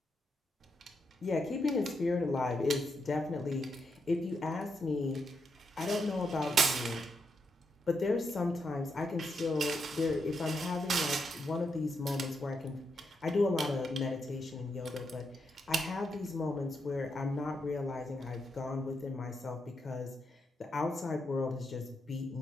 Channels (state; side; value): normal; both; correlation 0.82